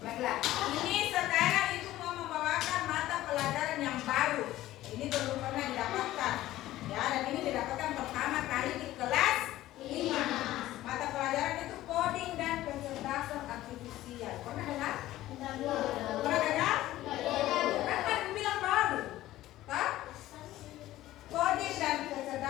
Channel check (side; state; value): right; quieter; 15.2 dB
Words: Baiklah, ini sekarang Ibu mau membawakan mata pelajaran yang baru. Ini belum pernah didapatkan. Ya, dan ini didapatkan pertama kali di kelas 5. Mata pelajaran itu coding dan kecerdasan artifisial. Pernah dengar? Pernah dengar? Kan bilang baru. Hah? Coding dan